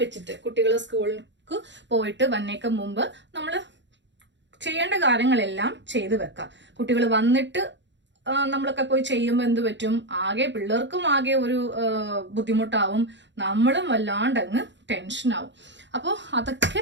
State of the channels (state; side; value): late; left; 0.53 ms